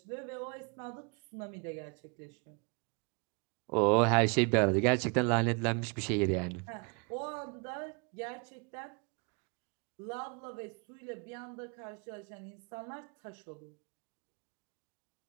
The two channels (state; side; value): quieter; left; 33.4 dB